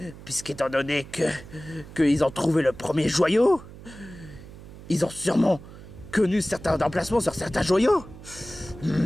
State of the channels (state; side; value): noise; right; hum, 17 dB below the sound